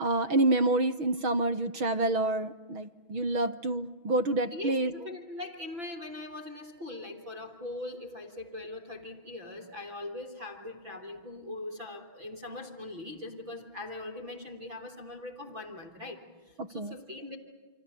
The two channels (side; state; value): left; late; 6.4 ms